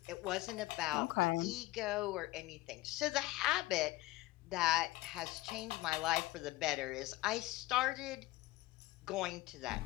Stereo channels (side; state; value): right; quieter; 19.1 dB